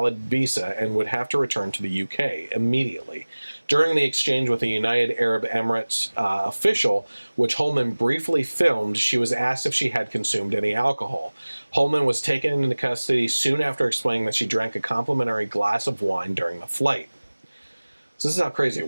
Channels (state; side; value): inverted; both; correlation -1.00